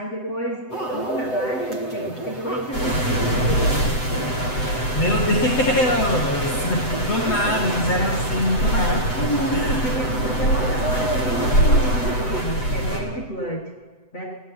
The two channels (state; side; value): late; right; 7.9 ms